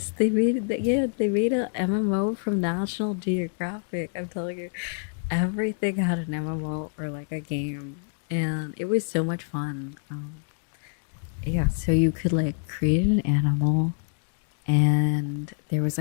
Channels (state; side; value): silent; right; digital silence